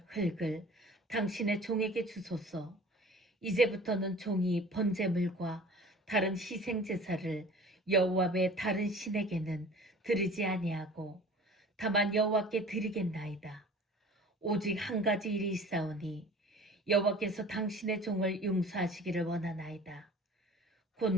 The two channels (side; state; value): both; normal; correlation 0.44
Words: 흙을 당신의 종에게 주소서. 이제부터는 종이 번제물과 다른 희생제사를 여호와 외 다른 신에게는 드리지 아니하고 다만 여호와께 드리겠나이다. 오직 한 가지 일이 있사오니 여호와께서 당신의 종을 용서하시기를 원하나이다. 곧